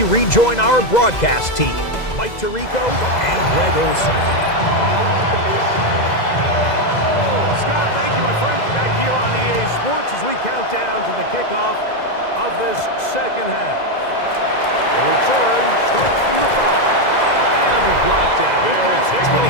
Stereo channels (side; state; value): right; late; 2.0 ms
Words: rejoin our broadcast team, Mike Tirico and Greg Olson. Scott, thank you, my friend. Back here on EA Sports as we count down to the kickoff of this second half. The return starts from the 5. And it'll be brought down. They'll take 25.